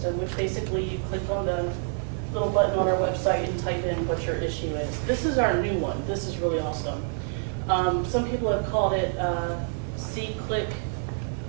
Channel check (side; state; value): left; silent; digital silence